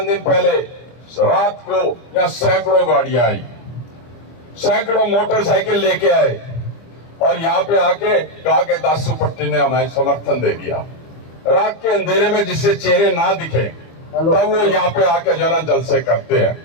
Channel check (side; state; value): right; late; 25 ms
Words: दिन पहले रात को यहाँ सैकड़ों गाड़ियां आई, सैकड़ों मोटरसाइकिल लेके आए, और यहाँ पे आके कहा कि दासू पट्टी ने हमें समर्थन दे दिया। रात के अंधेरे में जिससे चेहरे ना दिखे, तब वो यहाँ पे आके जो ना जलसे करते